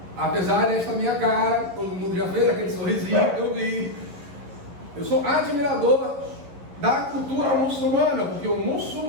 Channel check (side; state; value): left; late; 11 ms